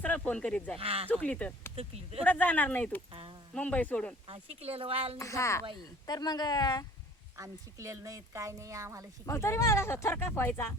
फोन करीत जाय हा. चुकली तर चुकली तर. कुठं जाणार नाही तू हा. मुंबई सोडून हा, शिकलेलं व्हायला नाही हा जात बाई तर मग आम्ही शिकलेलं नाहीत काय नाही आम्हाला मग शिकलेलं तरी मला असं थरकाप व्हायचा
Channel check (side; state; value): both; normal; correlation 0.50